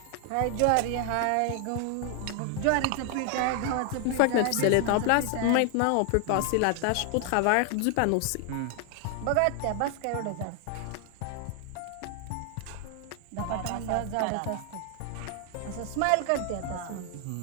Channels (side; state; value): both; different; correlation 0.00